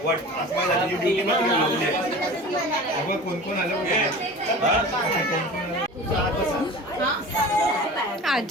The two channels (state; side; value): normal; both; correlation 0.37